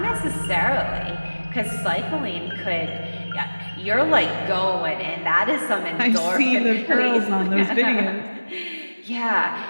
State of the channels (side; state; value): both; inverted; correlation -1.00